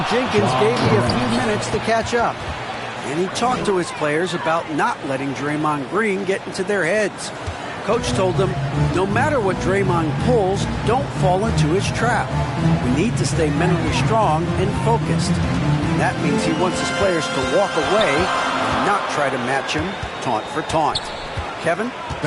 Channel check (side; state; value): both; identical; correlation 1.00